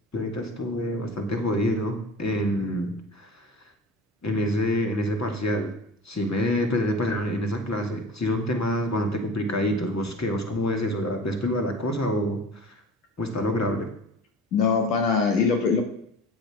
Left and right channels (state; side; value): normal; both; correlation 0.38